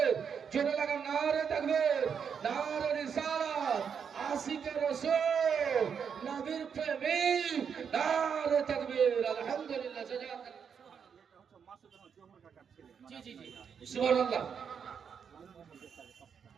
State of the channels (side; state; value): left; quieter; 7.0 dB